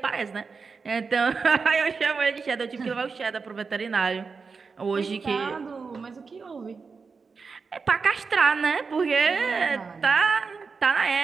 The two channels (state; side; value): quieter; left; 4.9 dB